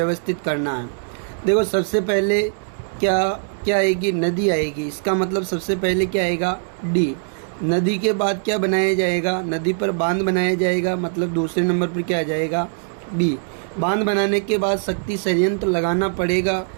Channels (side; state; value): left; silent; digital silence